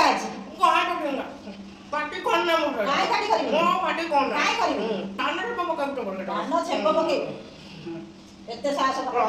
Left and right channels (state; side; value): identical; both; correlation 1.00